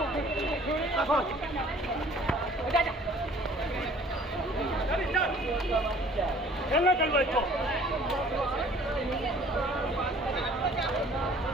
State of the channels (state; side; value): normal; both; correlation 0.53